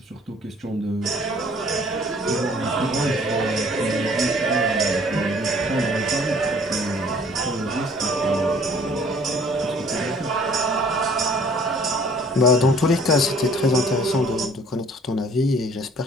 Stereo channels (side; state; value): both; normal; correlation 0.55